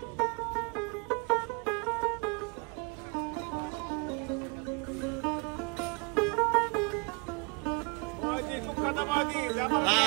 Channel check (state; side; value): quieter; left; 33.0 dB